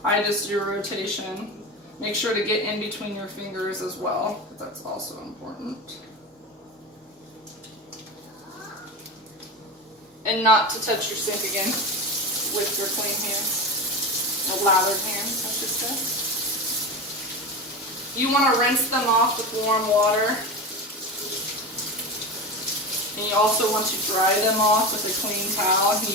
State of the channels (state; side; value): normal; both; correlation 0.24